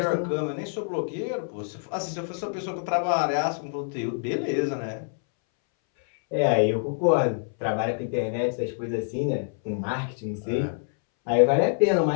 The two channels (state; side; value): silent; right; 61 dB below the other